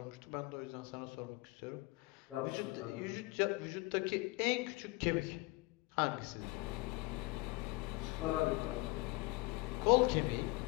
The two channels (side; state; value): right; quieter; 23.1 dB